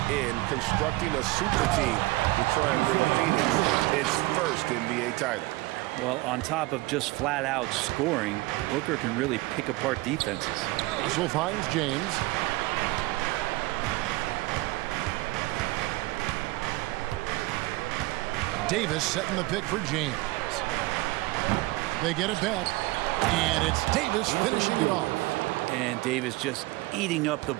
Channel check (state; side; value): quieter; left; 21.0 dB